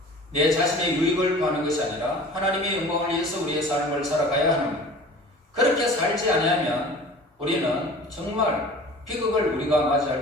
내 자신의 유익을 구하는 것이 아니라 하나님의 영광을 위해서 우리의 삶을 살아가야 하는, 그렇게 살지 아니하면 우리는 정말 비극을 우리가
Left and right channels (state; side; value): normal; both; correlation 0.43